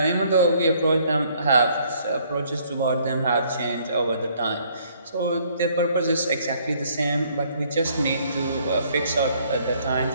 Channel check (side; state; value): both; inverted; correlation -0.64